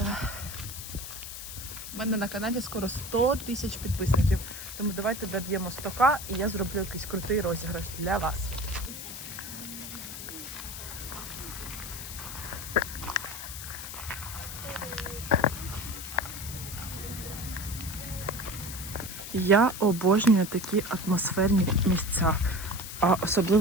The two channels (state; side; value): noise; left; hiss, 9 dB below the sound